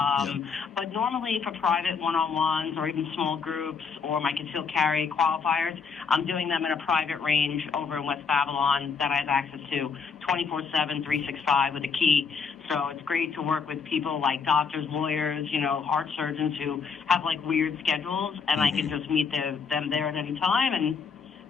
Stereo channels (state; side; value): quieter; right; 5.7 dB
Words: But normally for private one-on-ones or even small groups or my concealed carry qualifiers, I'm doing them in a private range over in West Babylon that I have access to 24/7, 365 with a key. So it's great to work with people like doctors, lawyers, heart surgeons who have like weird schedules, and I can just meet them there at any time and